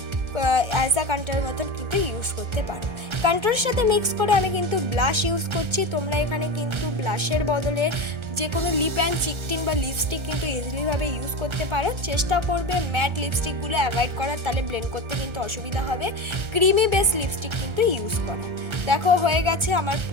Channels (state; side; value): late; left; 1.4 ms